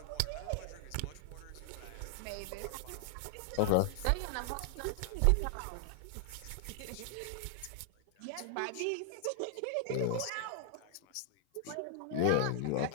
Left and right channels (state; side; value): different; both; correlation -0.01